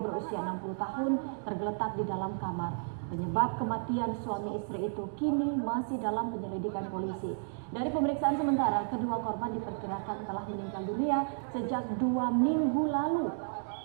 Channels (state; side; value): silent; left; digital silence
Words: 60 tahun tergeletak di dalam kamar. Penyebab kematian suami istri itu kini masih dalam penyelidikan polisi. Dari pemeriksaan sementara, kedua korban diperkirakan telah meninggal dunia sejak 2 minggu lalu.